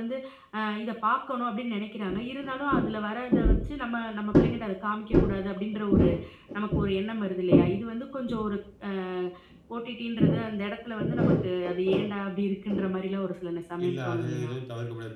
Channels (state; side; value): identical; both; correlation 1.00